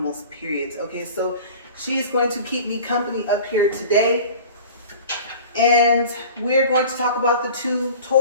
period. Okay, so she's going to keep me company up here today. And we're going to talk about the 2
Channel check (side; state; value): both; inverted; correlation -0.41